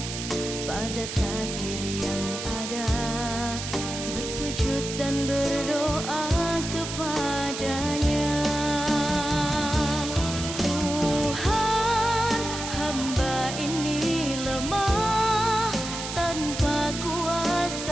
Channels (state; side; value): noise; right; hiss, 7 dB below the sound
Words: pada takdir yang ada, bersujud dan berdoa kepadanya. Tuhan, hamba ini lemah, tanpa